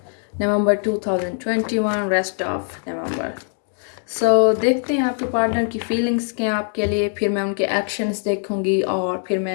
November 2021, rest of November. देखते हैं आपके पार्टनर की फीलिंग्स क्या हैं आपके लिए. फिर मैं उनके एक्शंस देखूंगी और फिर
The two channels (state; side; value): silent; right; 56 dB below the other